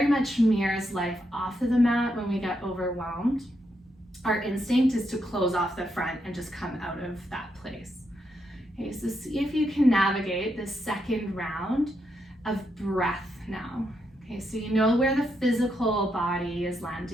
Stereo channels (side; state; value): both; normal; correlation 0.81